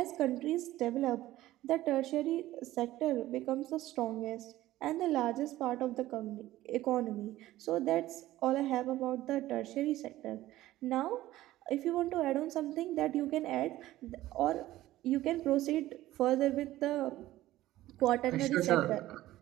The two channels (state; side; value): quieter; left; 15.5 dB